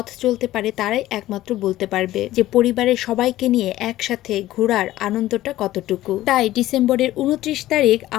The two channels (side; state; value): right; quieter; 15.2 dB